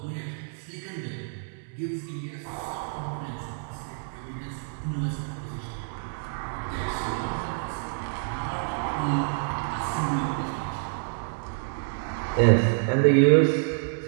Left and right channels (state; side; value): silent; left; 59 dB below the other